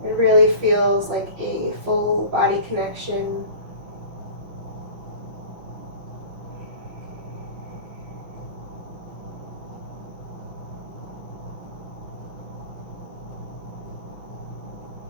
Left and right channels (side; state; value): left; late; 5.6 ms